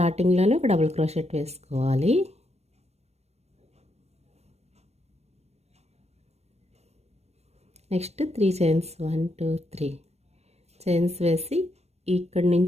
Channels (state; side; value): late; left; 0.31 ms